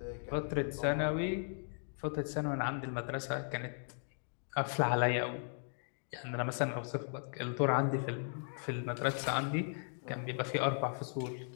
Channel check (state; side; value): silent; right; 53 dB below the other